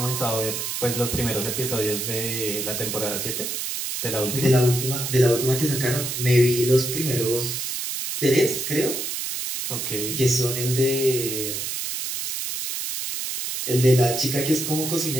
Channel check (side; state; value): right; noise; hiss, 3 dB below the sound